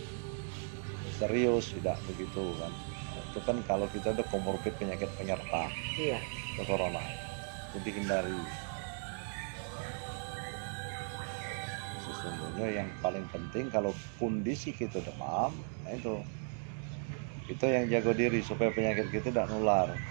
serius, tidak begitu kan. Itu kan kalau kita ada komorbid penyakit penyerta, Iya. ke corona itu dihindari. Sesungguhnya yang paling penting kalau kondisi kita demam, nah itu kita yang jaga diri supaya penyakit kita tidak nular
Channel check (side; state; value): left; silent; 54 dB below the other